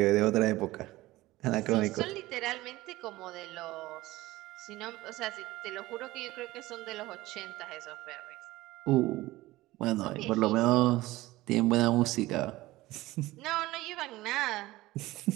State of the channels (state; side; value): quieter; left; 18.2 dB